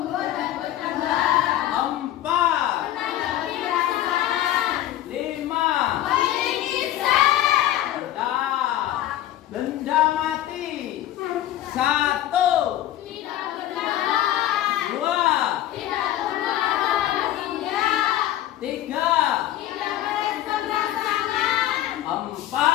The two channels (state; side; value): quieter; right; 13.2 dB